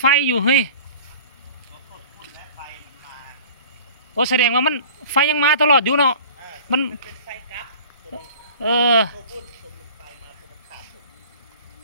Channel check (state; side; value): inverted; both; correlation -0.43